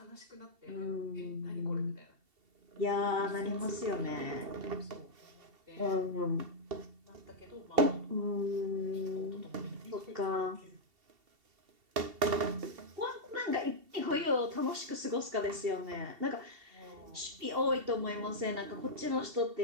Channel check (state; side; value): late; left; 2.7 ms